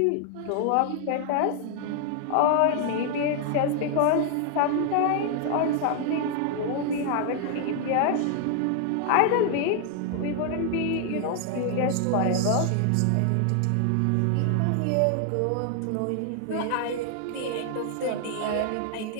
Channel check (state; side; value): different; both; correlation 0.00